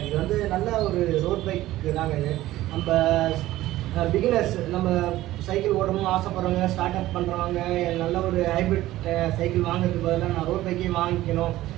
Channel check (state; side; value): quieter; left; 15.7 dB